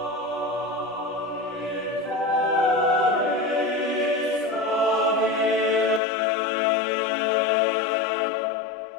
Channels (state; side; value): drops out; right; at 6.0 s